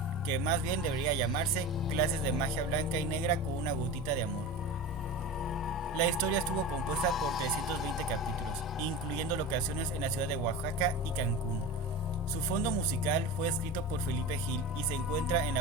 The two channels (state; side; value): normal; both; correlation 0.29